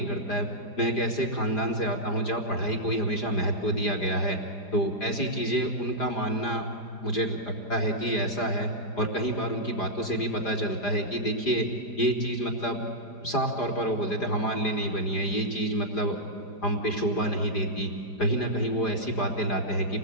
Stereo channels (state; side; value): late; right; 4.9 ms